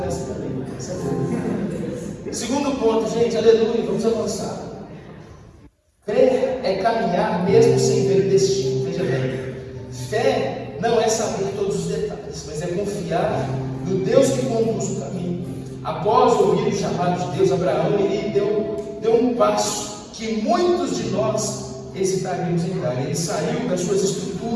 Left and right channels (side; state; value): both; identical; correlation 1.00